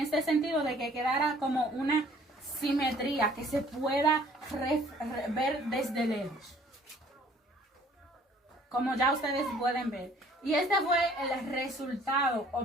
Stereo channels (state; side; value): normal; both; correlation 0.56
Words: sentido de que quedara como una simetría que se pueda ver desde lejos, como ya ustedes pueden ver. Y este fue el resultado